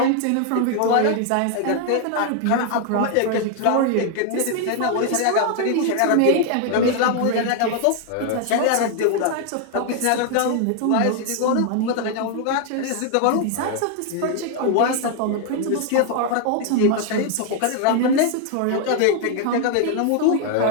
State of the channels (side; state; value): both; different; correlation 0.00